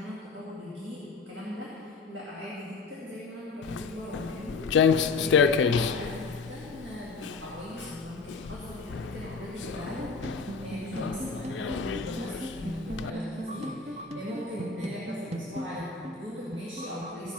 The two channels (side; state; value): right; quieter; 4.4 dB